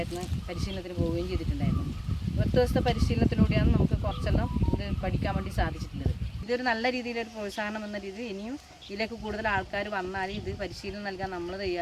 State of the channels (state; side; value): identical; both; correlation 1.00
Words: പരിശീലനത്തിന് പോവുകയും ചെയ്തിട്ടുണ്ടായിരുന്നു. 10 ദിവസത്തെ പരിശീലനത്തിലൂടെയാണ് നമുക്ക് കുറച്ചെല്ലാം ഇത് പഠിക്കാൻ വേണ്ടി സാധിച്ചിട്ടുള്ളത്. ഇതൊരു നല്ല രീതിയിലൊരു പ്രോത്സാഹനം എന്ന രീതിയിൽ ഇനിയും ഇതിലേക്ക് കൂടുതൽ ആൾക്കാർ വന്നാൽ ഇത് പരിശീലനം നൽകാൻ നമ്മൾ